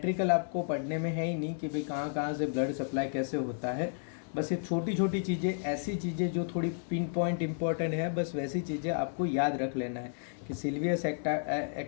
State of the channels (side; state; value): right; silent; 56 dB below the other